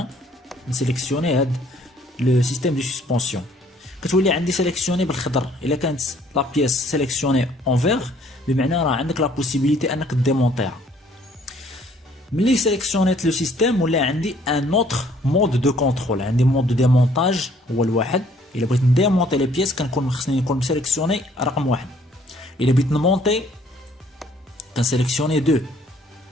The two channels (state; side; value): normal; both; correlation 0.61